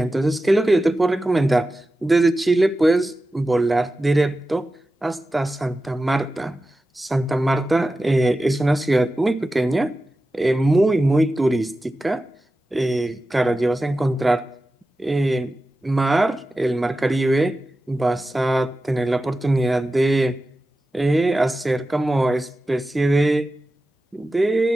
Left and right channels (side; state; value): both; normal; correlation 0.94